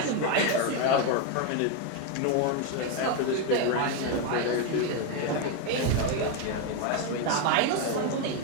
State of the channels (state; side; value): different; both; correlation 0.02